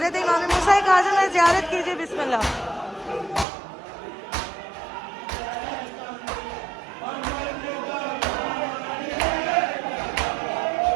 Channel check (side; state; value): left; drops out; at 3.5 s